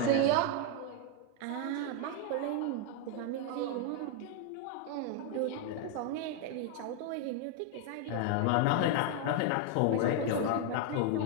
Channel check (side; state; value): both; different; correlation 0.01